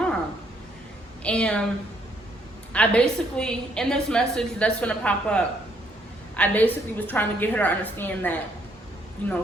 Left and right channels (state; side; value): normal; both; correlation 0.69